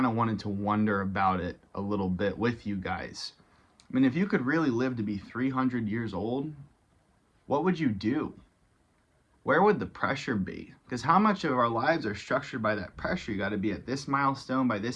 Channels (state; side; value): identical; both; correlation 1.00